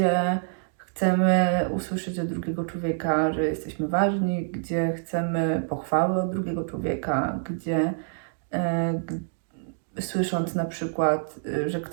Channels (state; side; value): silent; left; digital silence